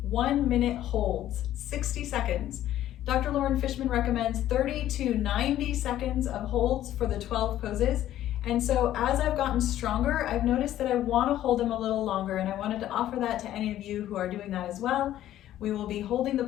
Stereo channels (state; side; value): quieter; right; 12.8 dB